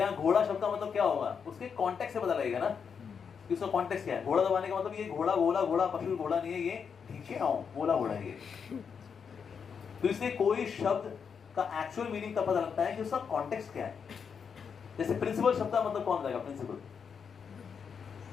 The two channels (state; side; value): quieter; right; 6.5 dB